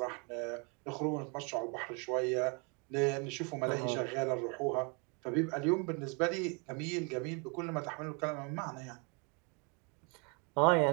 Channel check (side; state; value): left; quieter; 33.7 dB